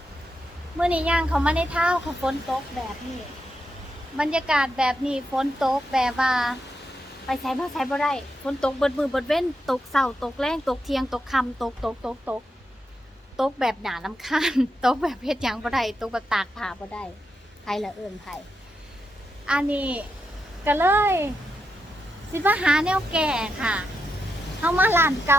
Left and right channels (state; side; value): normal; both; correlation 0.85